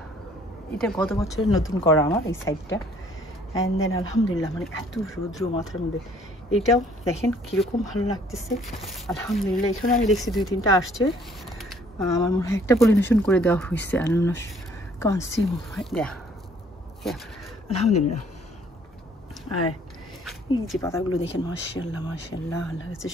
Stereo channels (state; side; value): normal; both; correlation 0.60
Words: এটা গত বছরের নতুন করা আমার এই সাইডটা। অ্যান্ড দেন আলহামদুলিল্লাহ মানে এত রৌদ্র মাথার মধ্যে, এটাও দেখেন কীরকম ভালো লাগতেছে আলহামদুলিল্লাহ। এখানে আমি দেখছি 2-3টা আসছে, আমার মনে হয় একটা পলিনেশন করে দেওয়া হয়েছে কনসিউম দেয়া আলহামদুলিল্লাহ। আর এই যে পাতাগুলো দেখেন মাশাআল্লাহ মাশাআল্লাহ, আল্লাহ কাছে